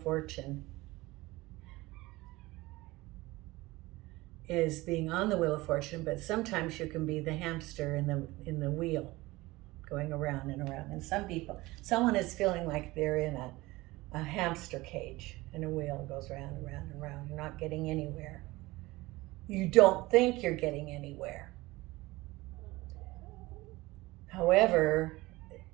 Fortune is being on the Wheel of Fortune, but sometimes you can be the hamster in the wheel, going around and around. And someone is feeling like they're in a hamster cage, and a wheel goes round and round and round. You're not getting anywhere. You don't think you're getting anywhere. However,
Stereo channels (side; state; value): left; quieter; 20.3 dB